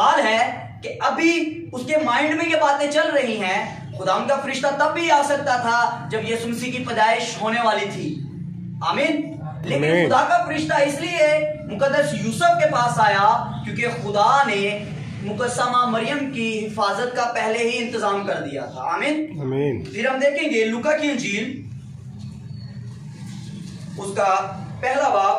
है कि अभी उसके माइंड में ये बातें चल रही हैं, खुदा उनका फरिश्ता तब भी आ सकता था जब यीशु मसीह की पैदाइश होने वाली थी। आमीन। लेकिन खुदा का फरिश्ता इसलिए मुकद्दस यूसुफ के पास आया क्योंकि खुदा ने मुकद्दसा माँ मरियम की हिफाजत का पहले ही इंतजाम कर दिया था। आमीन आमीन। फिर हम देखेंगे लूका की इंजील उसका पहला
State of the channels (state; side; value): identical; both; correlation 1.00